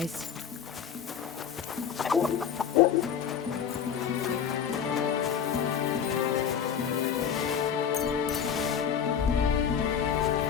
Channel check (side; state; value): right; quieter; 7.9 dB